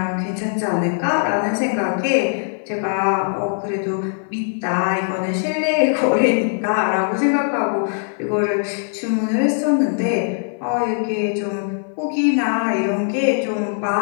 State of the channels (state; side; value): silent; right; 57 dB below the other